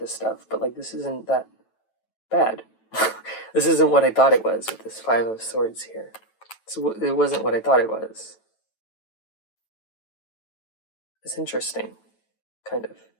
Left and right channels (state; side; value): late; right; 9.1 ms